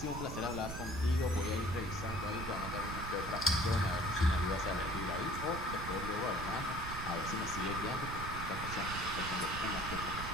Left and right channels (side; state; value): right; noise; rumble, 7 dB below the sound